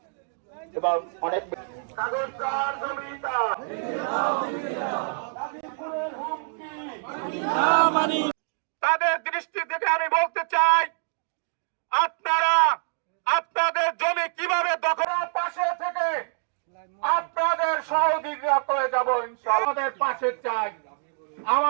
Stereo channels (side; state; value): left; silent; digital silence